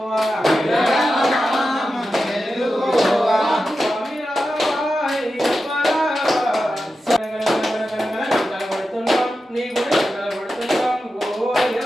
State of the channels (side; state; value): both; normal; correlation 0.91